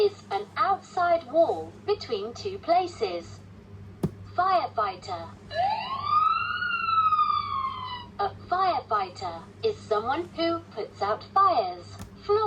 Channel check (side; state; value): both; identical; correlation 1.00